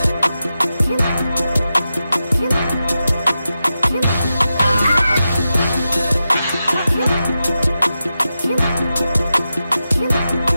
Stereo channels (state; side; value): inverted; both; correlation -0.90